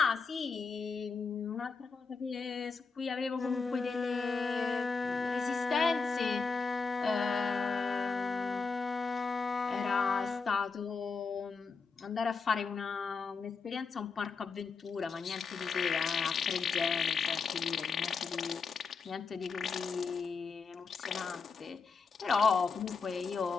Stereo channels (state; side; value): quieter; right; 4.8 dB